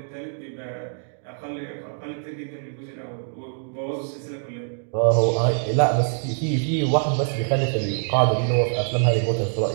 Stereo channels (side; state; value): left; silent; digital silence